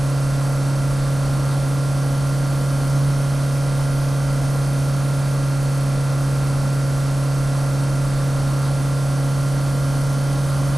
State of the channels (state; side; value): noise; left; hum, 13 dB below the sound